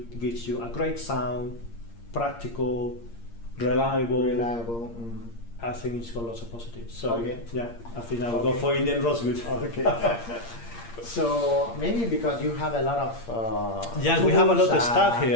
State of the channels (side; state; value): right; late; 8.6 ms